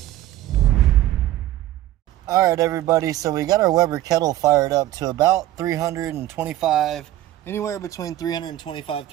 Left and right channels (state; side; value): quieter; left; 14.3 dB